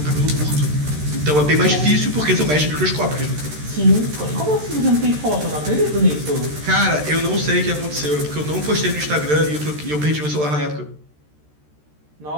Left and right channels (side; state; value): left; late; 13 ms